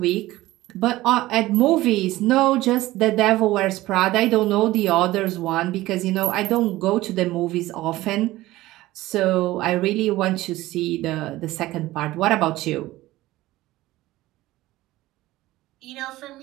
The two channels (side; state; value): left; quieter; 17.2 dB